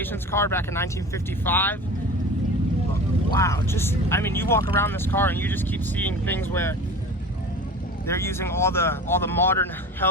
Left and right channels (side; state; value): both; normal; correlation 0.36